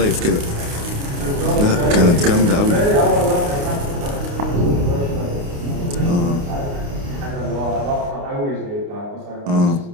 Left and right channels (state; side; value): late; left; 29 ms